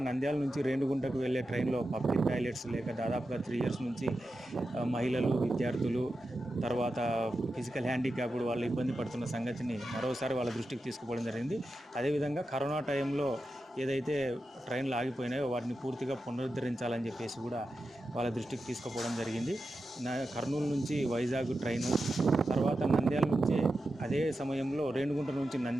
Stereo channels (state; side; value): normal; both; correlation 0.90